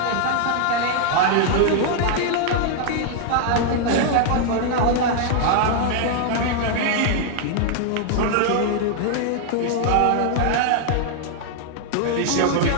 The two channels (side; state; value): both; different; correlation 0.00